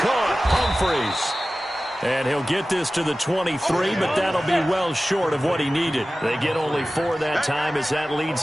Humphreys. And he'll get this to the 23, but that'll be well short of what he needed. They get only 4 that time as that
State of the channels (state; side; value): normal; both; correlation 0.96